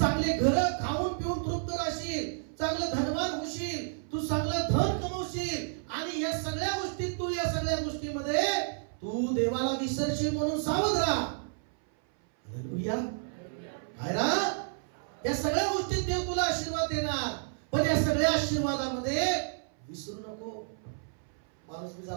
घर खाऊन पिऊन तृप्त राहशील, चांगलं धनवान होशील, तू चांगलं धन कमवशील आणि या सगळ्या गोष्टीत तू, या सगळ्या गोष्टीमध्ये तू देवाला विसरशील म्हणून सावध राहा. हालेलुया. काय रा? या सगळ्या गोष्टीत देव तुला आशीर्वाद देणार, पण या सगळ्या आशीर्वादामध्ये विसरू नको. माणूस मी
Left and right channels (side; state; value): left; silent; 57 dB below the other